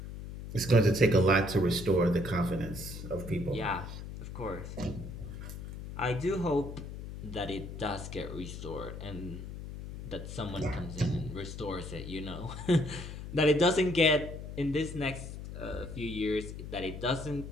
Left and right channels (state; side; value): noise; left; hum, 9 dB below the sound